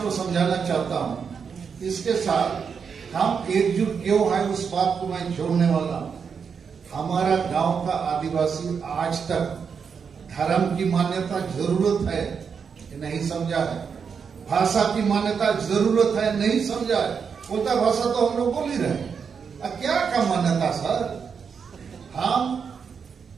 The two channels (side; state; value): left; quieter; 6.3 dB